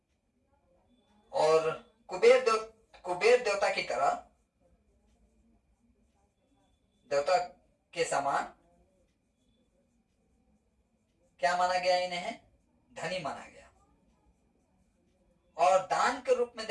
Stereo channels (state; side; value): identical; both; correlation 1.00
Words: और कुबेर देवता की तरह, देवता के समान क्या माना गया? इन्हें धनी माना गया। और दान के रूप में